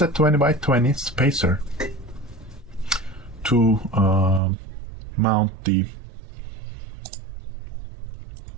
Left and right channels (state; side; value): drops out; left; at 4.4 s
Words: a 20 by 20 spacer to mount the,